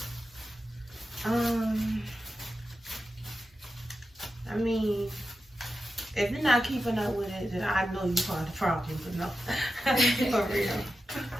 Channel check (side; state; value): both; normal; correlation 0.91